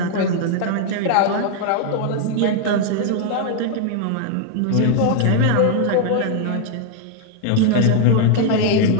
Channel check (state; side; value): different; both; correlation 0.00